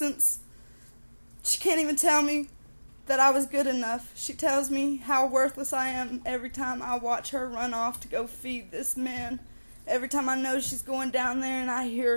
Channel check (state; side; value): inverted; both; correlation -1.00